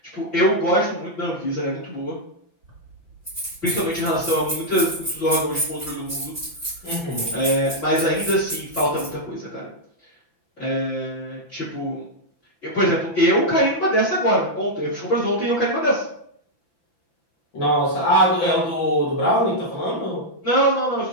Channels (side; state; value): right; late; 5.9 ms